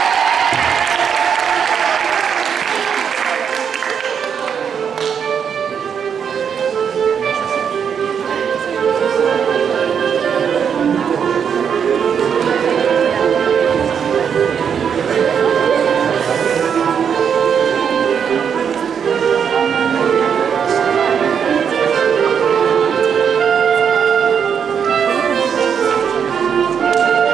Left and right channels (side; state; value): left; quieter; 7.4 dB